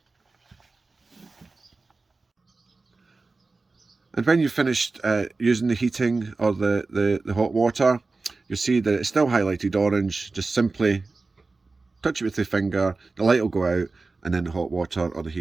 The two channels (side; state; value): left; quieter; 3.8 dB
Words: And when you've finished using the heating or the hot water, you'll see that it's still highlighted orange. Just simply touch it with the finger, the light will go out, and then the hot water or the